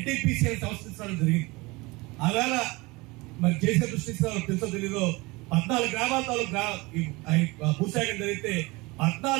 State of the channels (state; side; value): quieter; left; 23.8 dB